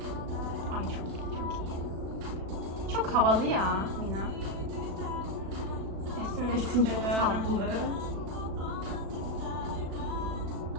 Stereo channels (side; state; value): left; late; 36 ms